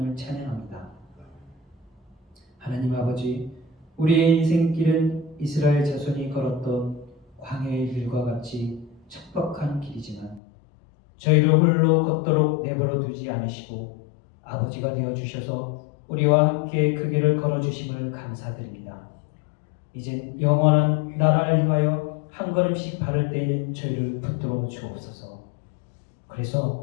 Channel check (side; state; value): right; drops out; at 10.4 s